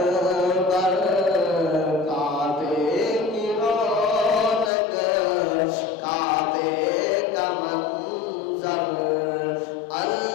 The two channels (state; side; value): drops out; right; at 4.7 s